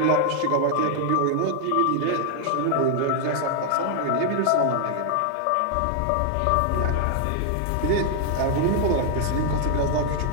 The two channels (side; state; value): both; different; correlation 0.00